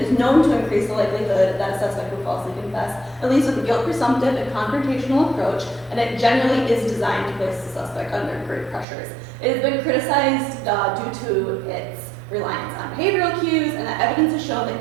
known to increase the likelihood that a suspect will falsely confess. It leads with a guilt presumptive and confrontational approach, and it generally is designed to place the suspect under great pressures. It has been criticized due to its reliance on behavioral cues, and that evidence has shown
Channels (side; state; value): left; drops out; at 8.8 s